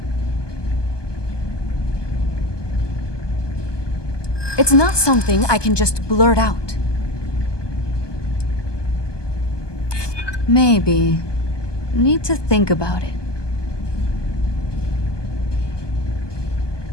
It's not something I can just blurt out. Maybe. Need to think about it.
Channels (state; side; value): late; right; 1.2 ms